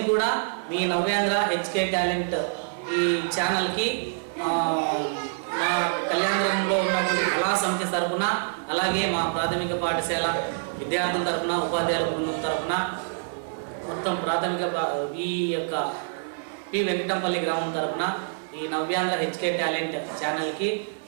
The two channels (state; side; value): silent; left; 61 dB below the other